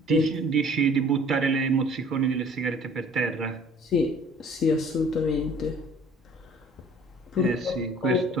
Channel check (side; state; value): both; normal; correlation 0.52